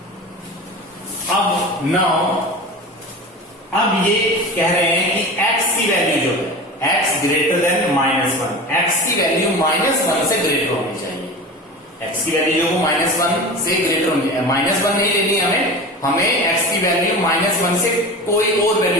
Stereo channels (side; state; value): both; normal; correlation 0.31